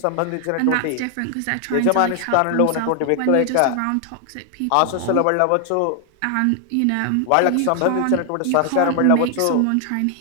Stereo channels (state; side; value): different; both; correlation 0.00